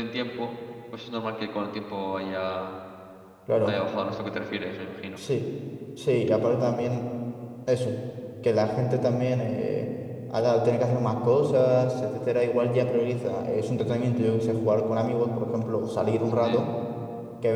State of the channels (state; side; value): identical; both; correlation 1.00